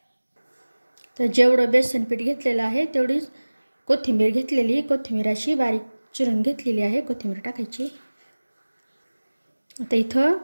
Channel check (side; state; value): both; inverted; correlation -1.00